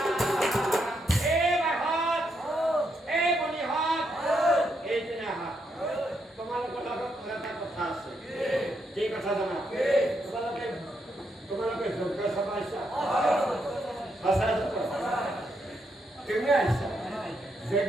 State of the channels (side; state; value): both; normal; correlation 0.79